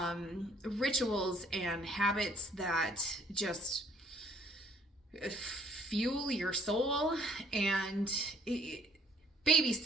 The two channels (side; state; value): both; normal; correlation 0.61